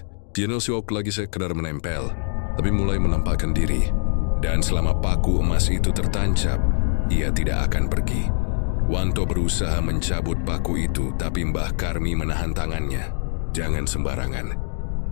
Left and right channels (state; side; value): silent; right; 61 dB below the other